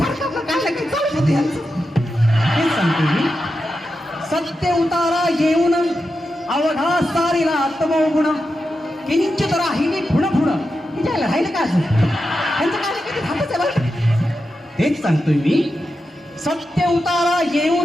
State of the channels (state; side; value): normal; both; correlation 0.89